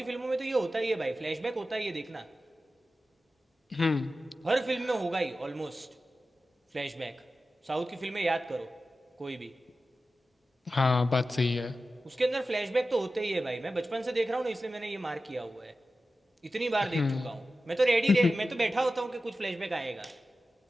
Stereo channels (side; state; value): both; normal; correlation 0.93